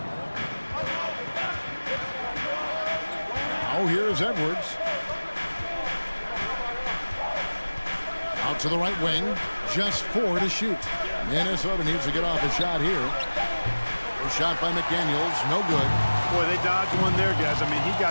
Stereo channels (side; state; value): both; inverted; correlation -1.00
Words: Now here's Edwards. Out to the right wing. Just 4 to shoot. Minnesota needs to get off a shot here. A shot by McDaniels. No good. Boy, they dodged one there, guys. I mean, he